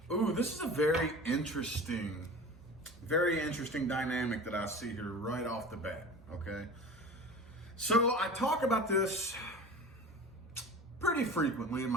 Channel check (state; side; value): normal; both; correlation 0.36